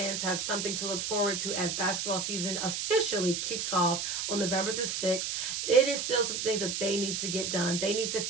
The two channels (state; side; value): noise; right; hiss, 2 dB below the sound